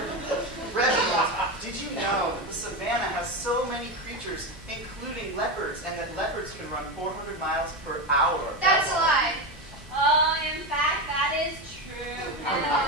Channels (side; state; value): both; normal; correlation 0.15